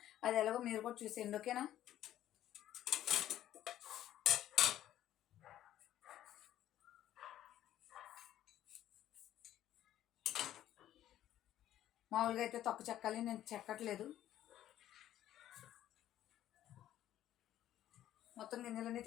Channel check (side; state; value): right; quieter; 12.4 dB